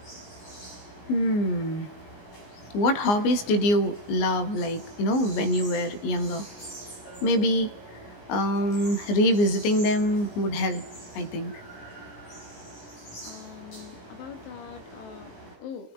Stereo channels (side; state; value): right; late; 19 ms